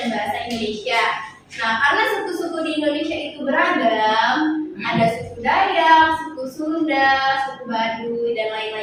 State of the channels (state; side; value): identical; both; correlation 1.00